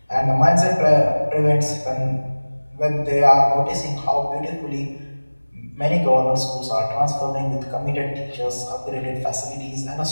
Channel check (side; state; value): both; inverted; correlation -1.00